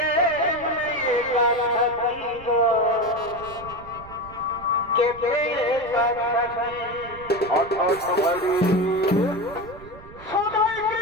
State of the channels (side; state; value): right; noise; rumble, 18 dB below the sound